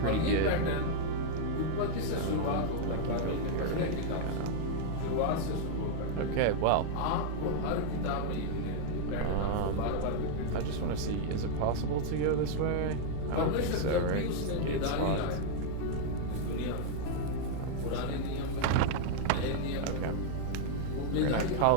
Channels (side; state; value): both; different; correlation -0.01